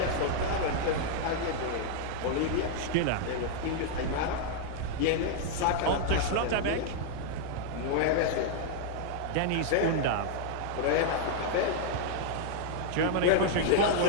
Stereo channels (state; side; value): different; both; correlation 0.00